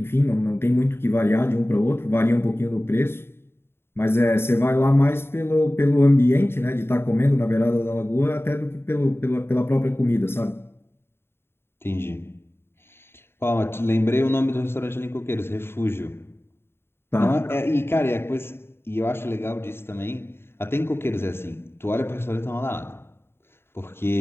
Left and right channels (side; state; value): right; late; 0.11 ms